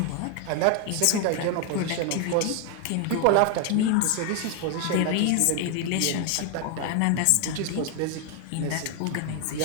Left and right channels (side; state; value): both; different; correlation 0.01